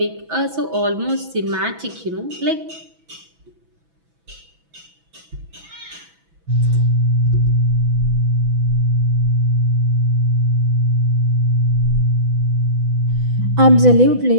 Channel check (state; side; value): late; left; 6.0 ms